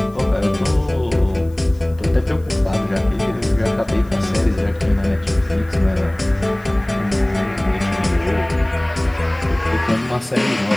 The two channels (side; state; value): left; noise; hiss, 30 dB below the sound